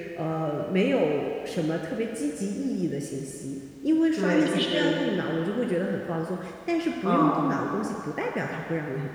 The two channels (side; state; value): both; identical; correlation 1.00